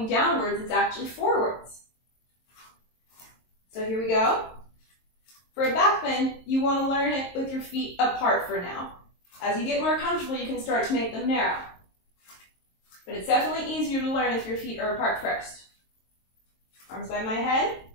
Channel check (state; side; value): late; right; 22 ms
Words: downwards, it's actually forwards. So here we go. For a back bend, you want to learn it with your feet apart for now. As you get more comfortable, you can start to make them narrow. But it's definitely easier to learn if your feet are apart first. Arms by my head.